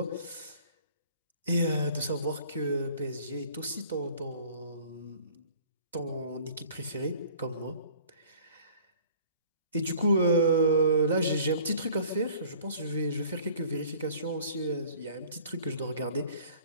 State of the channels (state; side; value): inverted; both; correlation -0.50